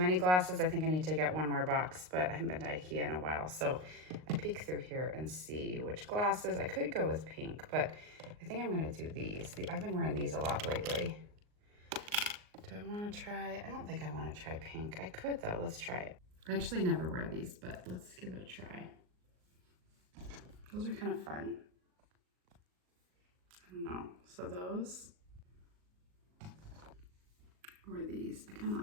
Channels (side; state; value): left; late; 38 ms